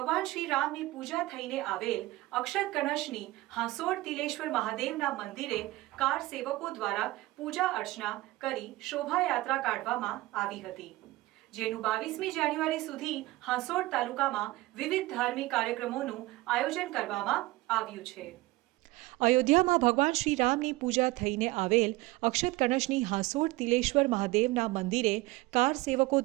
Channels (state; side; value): quieter; left; 19.2 dB